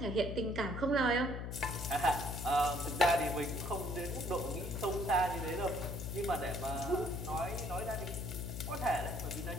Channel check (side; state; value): left; noise; hum, 5 dB below the sound